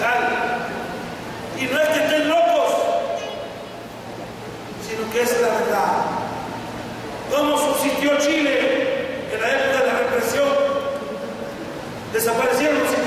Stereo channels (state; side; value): identical; both; correlation 1.00